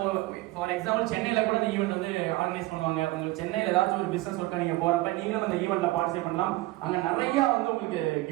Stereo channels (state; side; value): quieter; left; 18.9 dB